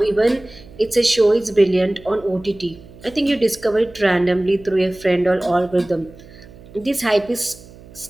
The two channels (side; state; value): right; noise; hum, 21 dB below the sound